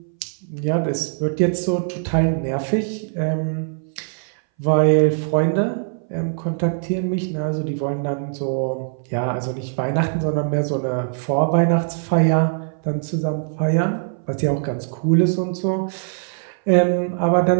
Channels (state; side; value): silent; left; 60 dB below the other